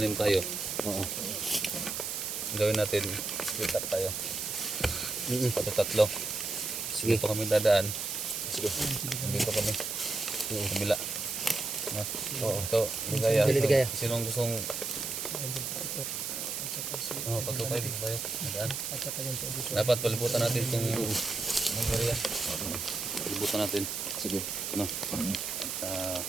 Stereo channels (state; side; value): noise; right; hiss, 3 dB below the sound